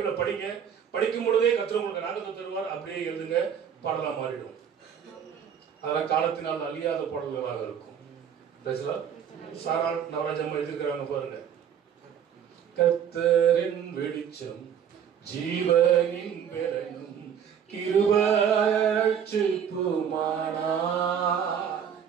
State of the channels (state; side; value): quieter; left; 8.3 dB